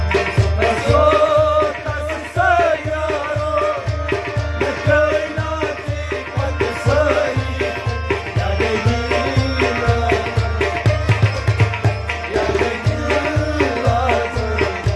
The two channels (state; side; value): identical; both; correlation 1.00